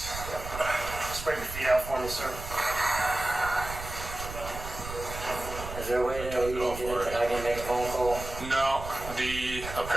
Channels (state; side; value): noise; right; rumble, 9 dB below the sound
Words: Spread your feet out for me, sir. Is there a way that I can make a phone call? No,